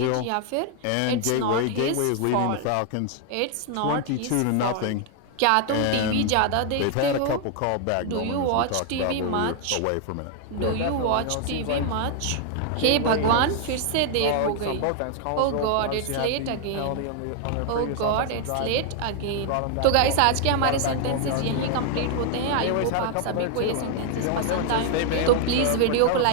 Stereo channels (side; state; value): both; different; correlation 0.00